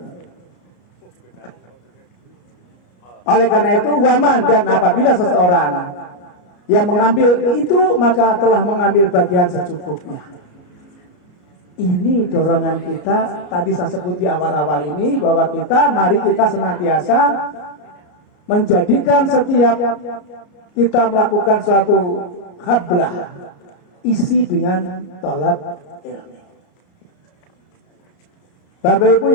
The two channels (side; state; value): right; late; 33 ms